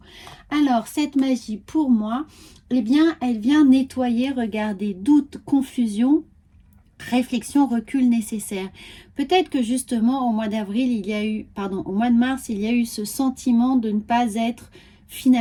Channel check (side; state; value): both; identical; correlation 1.00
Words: Alors, cette magie, pour moi, elle vient nettoyer, regardez, doute, confusion, réflexion, recul nécessaire. Peut-être que justement, au mois d'avril, au mois de mars, il y a eu ce sentiment de ne pas être